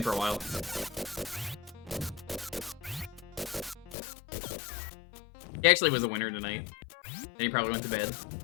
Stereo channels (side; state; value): right; drops out; at 4.0 s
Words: for a while. He actually was a winner tonight. And he probably went to bed.